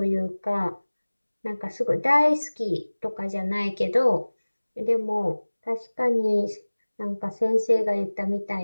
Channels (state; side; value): inverted; both; correlation -1.00